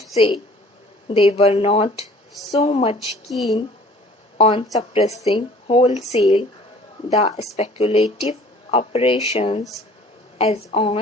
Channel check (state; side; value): normal; both; correlation 0.51